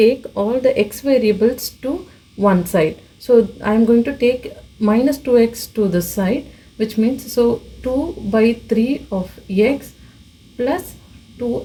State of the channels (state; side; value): identical; both; correlation 1.00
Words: all the x variables to one side. So I am going to take minus 2x to this side, which means so 2 by 3 of x plus